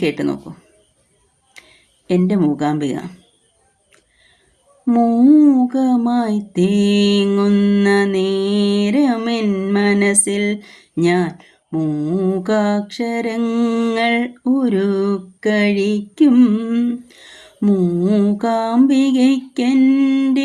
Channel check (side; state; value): both; identical; correlation 1.00